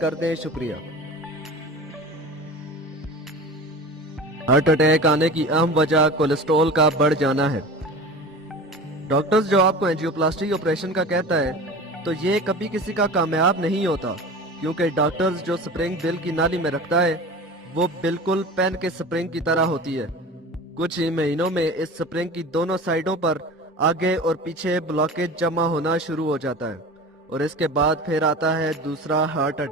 दें। शुक्रिया। हार्ट अटैक आने की अहम वजह कोलेस्ट्रॉल का बढ़ जाना है। डॉक्टर्स जो आपको एंजियोप्लास्टी ऑपरेशन का कहता है तो ये कभी किसी का कामयाब नहीं होता, क्योंकि डॉक्टर्स जो स्प्रिंग दिल की नाली में रखता है वो बिल्कुल पेन के स्प्रिंग की तरह होती है। कुछ ही महीनों में इस स्प्रिंग की दोनों साइडों पर आगे और पीछे ब्लॉकेज जमा होना शुरू हो जाता है, और इसके बाद फिर आता है दूसरा हार्ट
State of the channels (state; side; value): normal; both; correlation 0.35